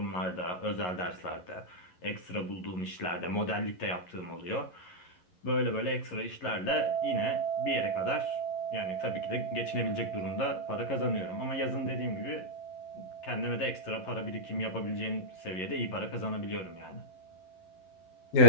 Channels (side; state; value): right; late; 11 ms